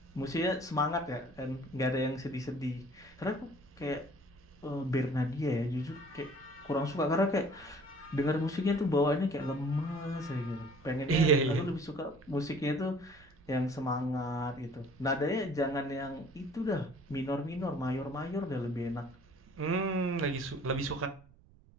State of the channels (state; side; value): noise; right; rumble, 26 dB below the sound